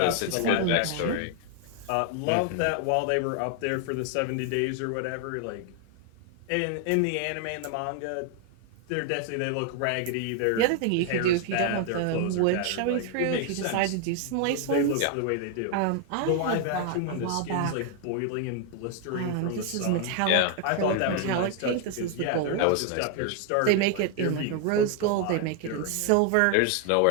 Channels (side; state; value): both; different; correlation 0.00